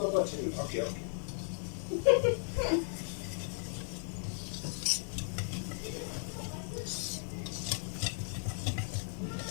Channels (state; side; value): silent; right; 54 dB below the other